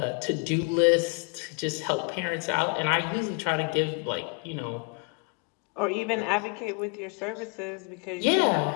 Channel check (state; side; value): quieter; right; 34.4 dB